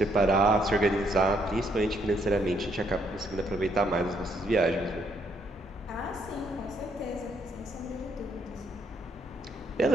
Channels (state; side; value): normal; both; correlation 0.72